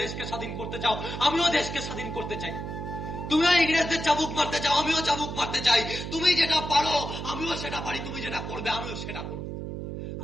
দেশকে স্বাধীন করতে চাও, আমিও দেশকে স্বাধীন করতে চাই। তুমিও ইংরেজদের চাবুক মারতে চাও, আমিও চাবুক মারতে চাই। তুমি যেটা পারো আমিও সেটা পারি, তুমি যেটা করবে আমিও সেটা করবো।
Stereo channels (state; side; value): noise; right; hum, 6 dB below the sound